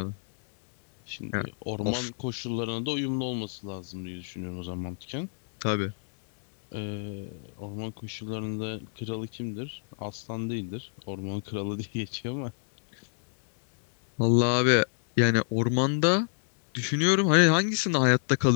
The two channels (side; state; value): right; silent; digital silence